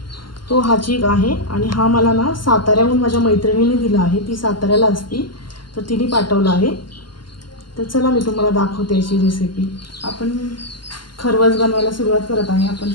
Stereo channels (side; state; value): right; late; 0.71 ms